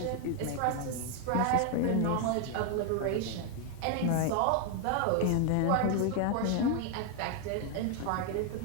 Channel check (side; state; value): both; different; correlation 0.00